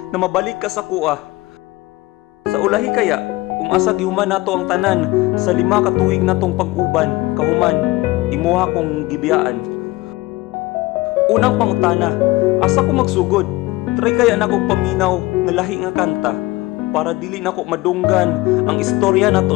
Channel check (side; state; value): right; quieter; 20.0 dB